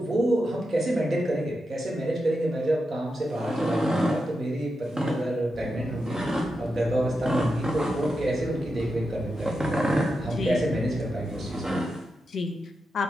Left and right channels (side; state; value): both; normal; correlation 0.88